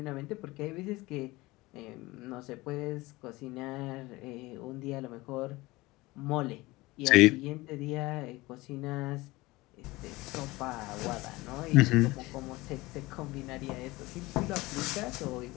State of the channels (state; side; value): quieter; right; 20.9 dB